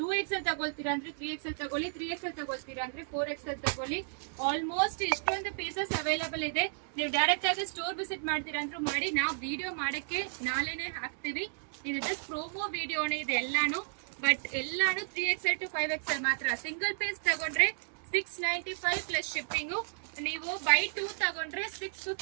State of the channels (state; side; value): silent; left; digital silence